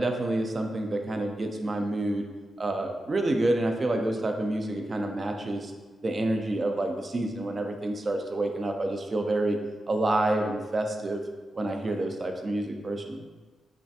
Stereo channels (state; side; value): normal; both; correlation 0.91